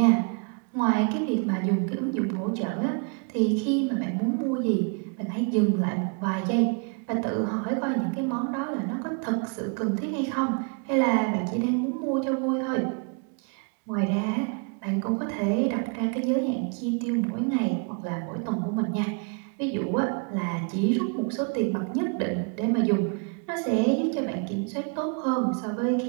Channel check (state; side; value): quieter; left; 36.5 dB